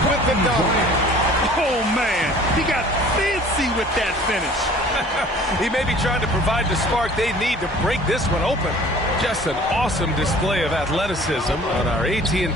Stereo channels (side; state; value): both; normal; correlation 0.49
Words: with the dunk. Oh, man. He got fancy with that finish. He may be trying to provide the spark they need to break this one open. Just an awesome display of athleticism on our